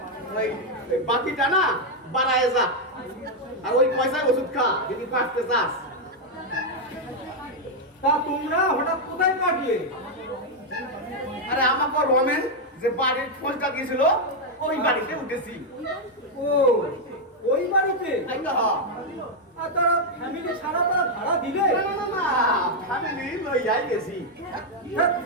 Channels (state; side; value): normal; both; correlation 0.00